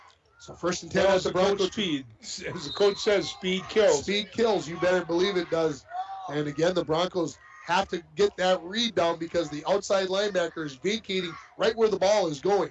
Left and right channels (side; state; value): both; identical; correlation 1.00